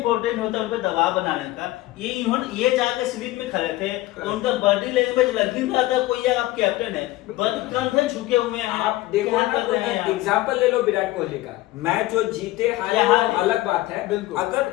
होता है उन पे दबाव बनाने का। ये जाके स्लीप में खड़े थे, तो उनका बॉडी लैंग्वेज लग ही रहा था कोई आप कैप्टन है, कंधे झुके हुए हैं, आप देखो क्या ना, कर रहे हैं आप? एग्जांपल ले लो विराट कोहली का, मैच जो जीते हारे यहाँ वो अलग बात है, बिल्कुल।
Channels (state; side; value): quieter; right; 17.6 dB